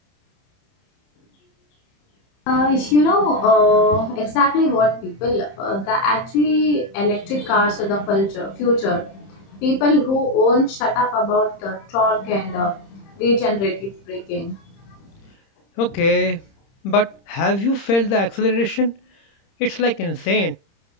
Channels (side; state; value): right; late; 30 ms